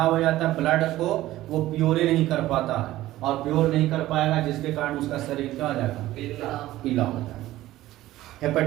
हो जाता है, ब्लड को वो प्योर नहीं कर पाता है, और प्योर नहीं कर पाएगा जिसके कारण उसका शरीर क्या हो जाएगा, पीला हो जाएगा।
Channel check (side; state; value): left; quieter; 15.6 dB